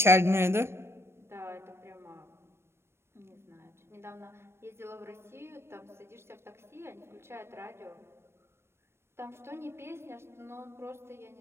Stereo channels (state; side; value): late; left; 0.12 ms